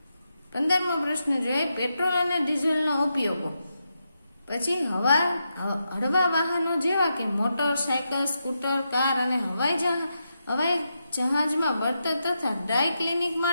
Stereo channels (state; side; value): inverted; both; correlation -0.85